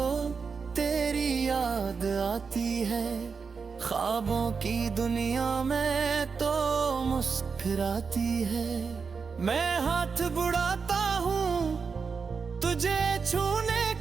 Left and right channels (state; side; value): quieter; left; 5.3 dB